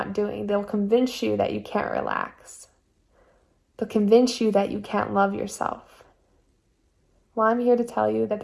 doing. They'll convince you that you can't relax. They'll convince you that you can't love yourself. Well, I'm here to tell you that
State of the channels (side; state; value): both; identical; correlation 1.00